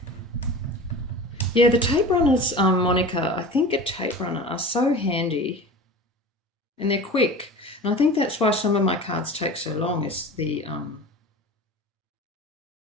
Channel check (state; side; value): normal; both; correlation 0.35